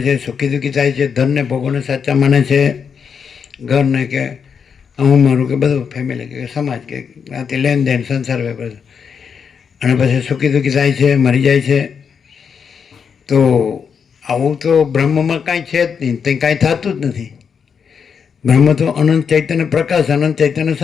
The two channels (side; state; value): right; quieter; 6.6 dB